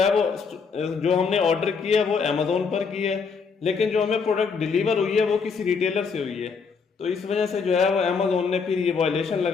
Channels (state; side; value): quieter; right; 5.4 dB